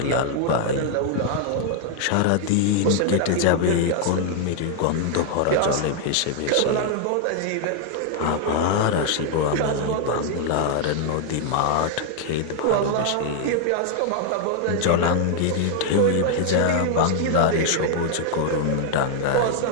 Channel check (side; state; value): both; different; correlation 0.00